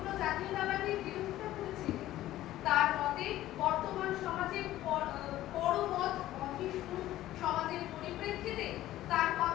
জাতীয়তাবাদের বিরোধিতা করেছিলেন। তার মতে বর্তমান সমাজের পরমত অহিষ্ণু সমাজের পরিপ্রেক্ষিতে তার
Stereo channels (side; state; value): right; quieter; 14.5 dB